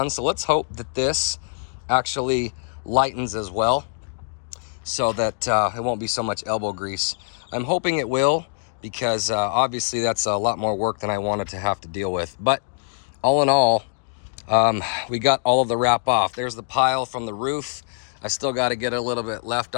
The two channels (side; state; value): right; silent; digital silence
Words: So let's hope that this actually lightens as well, so that it won't be so much elbow grease. I'm hoping it will, because obviously that's a lot more work than I wanted to have to deal with. But all in all, we got all of the wrap off. There's the pile from the roof. I still got to get a little bit left